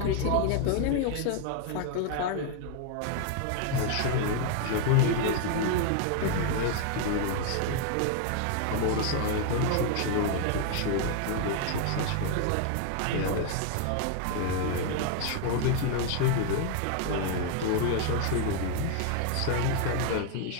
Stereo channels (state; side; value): different; both; correlation 0.00